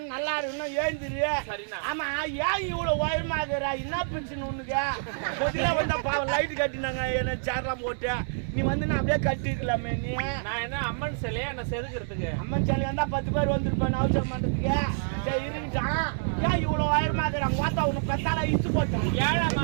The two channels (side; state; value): left; silent; digital silence